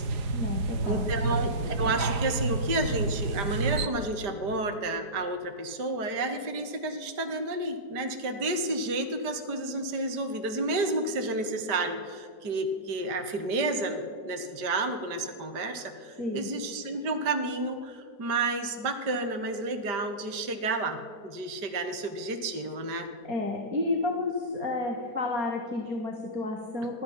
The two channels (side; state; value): left; late; 5.0 ms